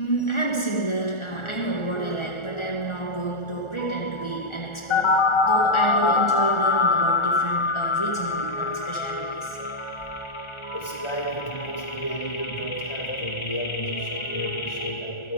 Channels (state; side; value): late; right; 1.4 ms